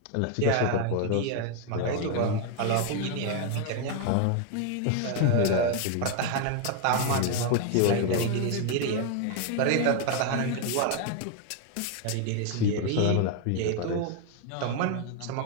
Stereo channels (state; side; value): different; both; correlation 0.01